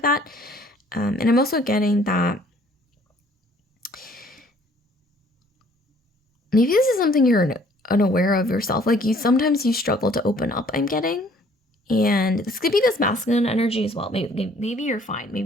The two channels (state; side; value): normal; both; correlation 0.58